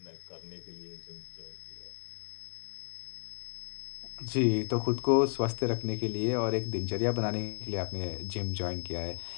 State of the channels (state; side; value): silent; right; 55 dB below the other